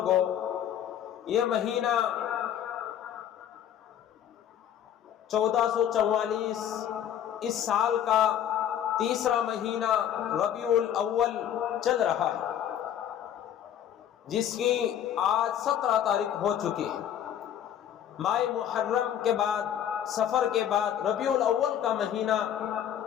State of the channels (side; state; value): right; quieter; 10.0 dB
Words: یہ مہینہ 1444 اس سال کا تیسرا مہینہ ربیع الاول چل رہا ہے، جس کی آج 17 تاریخ ہو چکی ہے۔ ماہ محرم کے بعد، سفر کے بعد ربیع الاول کا مہینہ